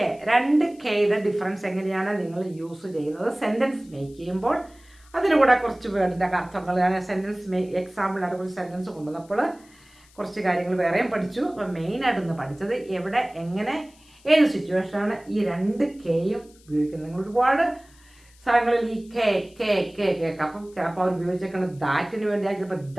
രണ്ട് കെയുടെ ഡിഫറൻസ് എങ്ങനെയാണ് നിങ്ങൾ യൂസ് ചെയ്യുന്നത് സെൻറ്റൻസ് മേക്ക് ചെയ്യുമ്പോൾ. അതിന് കൂടെ കുറച്ച് വേർഡിൻ്റെ അർത്ഥങ്ങൾ, ഞാൻ സെൻറ്റൻസ് എക്സാമ്പിളായിട്ട് കുറച്ച് സെൻറ്റൻസ് കൊണ്ടുവന്നപ്പോൾ കുറച്ച് കാര്യങ്ങൾ വേറെയും പഠിച്ചു. അപ്പോൾ മെയിനായിട്ടൊന്ന് പഠിച്ചത് എവിടെ, എങ്ങനെ, ഏത് സിറ്റുവേഷനാണ് ഈ രണ്ട് കെയും ഉപയോഗിക്കുന്നത്. നിങ്ങൾ ഒരുപാട് സ്ഥലങ്ങളിൽ ഈ കെ കേൾക്കാം. അപ്പം ചിലപ്പോൾ അവർ ഉപയോഗിച്ചേക്കുന്നത് ദാറ്റിന് വേണ്ടിയായി, ചിലപ്പോൾ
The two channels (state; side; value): noise; left; hiss, 28 dB below the sound